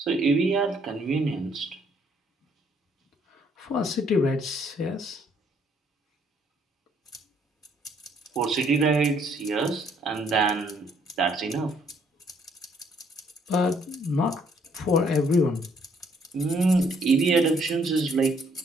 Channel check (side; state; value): both; normal; correlation 0.66